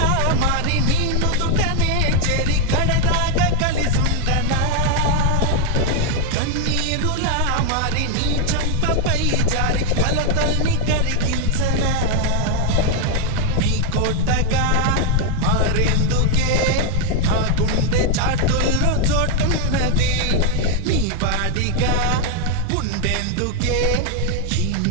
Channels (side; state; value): both; different; correlation 0.01